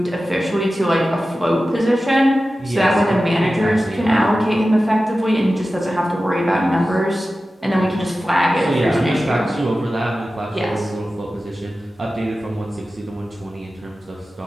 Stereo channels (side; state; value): both; normal; correlation 0.94